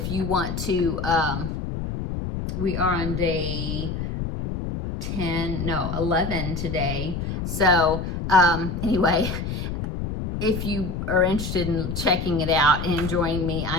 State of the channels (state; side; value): noise; left; rumble, 4 dB below the sound